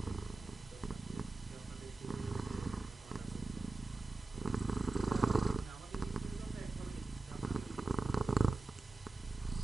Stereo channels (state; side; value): quieter; left; 3.2 dB